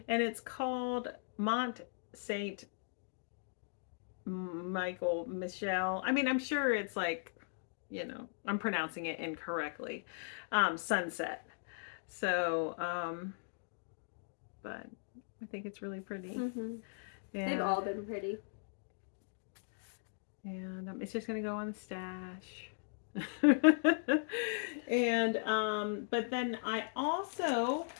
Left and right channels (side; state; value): right; silent; digital silence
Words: And it's called Mont Saint Michael Michelle. I mean, I'm sure it's like, I'm pronouncing it incorrectly. Sunset. So, but I think it's really pretty. Mm-hmm. They've all been pretty. And it's just gonna go on the stash. And but then I also